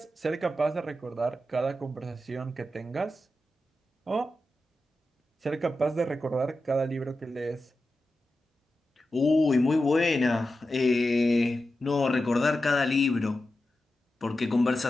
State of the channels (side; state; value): both; normal; correlation 0.91